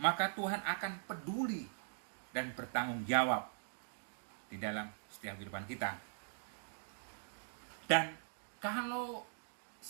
maka Tuhan akan peduli dan bertanggung jawab di dalam setiap kehidupan kita. Dan kalau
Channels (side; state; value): left; silent; digital silence